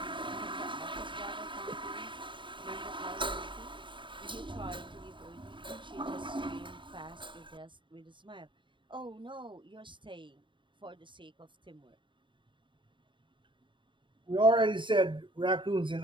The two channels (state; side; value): late; left; 0.23 ms